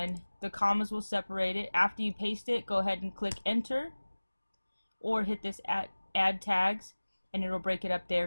the commas will separate it. After you paste it, go ahead and click enter or hit this add tags and it'll break it up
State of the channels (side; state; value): both; inverted; correlation -1.00